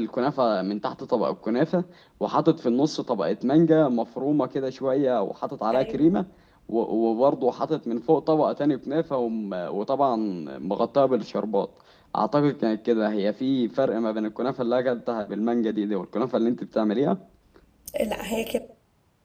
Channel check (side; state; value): both; identical; correlation 1.00